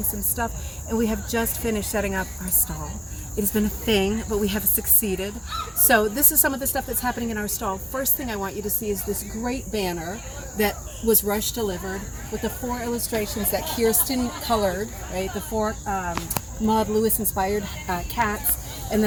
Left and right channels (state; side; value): identical; both; correlation 1.00